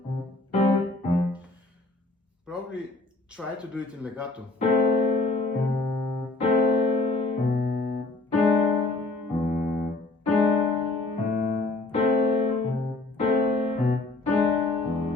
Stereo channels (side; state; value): right; quieter; 3.0 dB